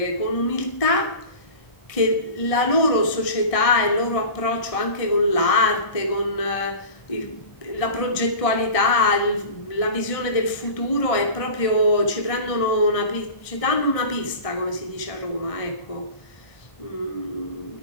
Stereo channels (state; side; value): late; right; 1.6 ms